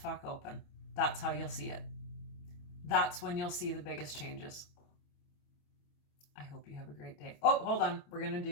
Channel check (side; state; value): right; late; 28 ms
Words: open. That's how you'll see it. That's when you'll see the biggest changes. I hope you have a great day. Oh, hold on. We're going to